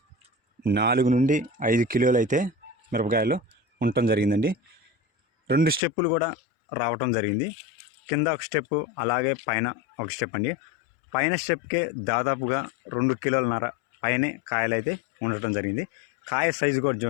4 నుండి 5 కిలోలు అయితే మిరపకాయలు ఉండటం జరిగిందండి. 2 స్టెప్పులు కూడా రావటం జరిగింది. కింద ఒక స్టెప్పు, అలాగే పైన ఒక స్టెప్ అండి. పైన స్టెప్కే దాదాపుగా 2 కిలోలన్నర పైనే కాయలు అయితే ఉండటం జరిగింది. కాయ సైజు కూడా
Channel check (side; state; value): right; drops out; at 5.8 s